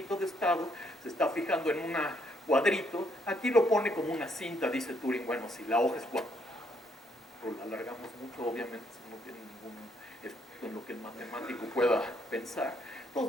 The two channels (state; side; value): normal; both; correlation 0.71